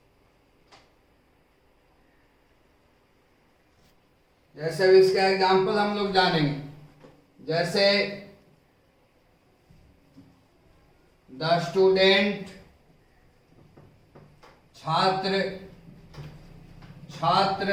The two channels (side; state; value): both; identical; correlation 1.00